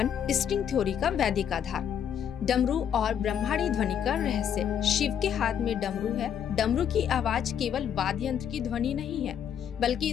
स्ट्रिंग थ्योरी का वैदिक आधार। डमरू और ब्रह्मांडीय ध्वनि का रहस्य। शिव के हाथ में डमरू है। डमरू की आवाज केवल वाद्य यंत्र की ध्वनि नहीं है, बल्कि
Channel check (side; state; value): right; quieter; 8.8 dB